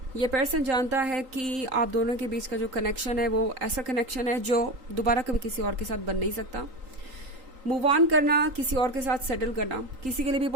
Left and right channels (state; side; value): late; left; 3.8 ms